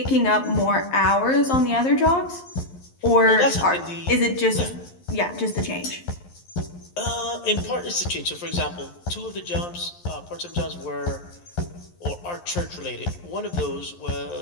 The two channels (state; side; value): late; right; 11 ms